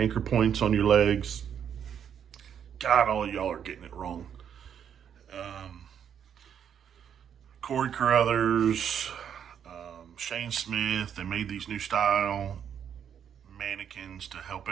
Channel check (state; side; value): quieter; left; 8.5 dB